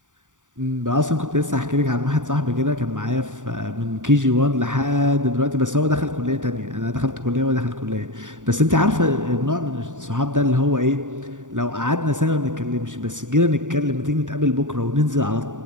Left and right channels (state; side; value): late; left; 0.87 ms